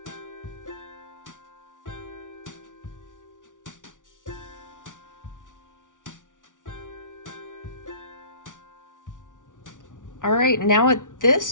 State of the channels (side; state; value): right; late; 0.87 ms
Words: All right, now at this